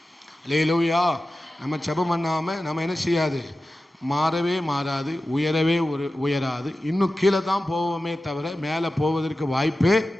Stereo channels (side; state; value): both; normal; correlation 0.94